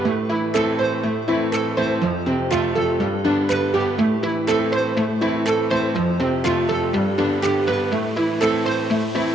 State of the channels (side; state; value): both; normal; correlation 0.77